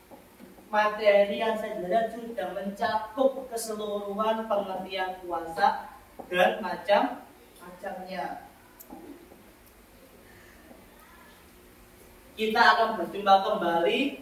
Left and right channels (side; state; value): both; identical; correlation 1.00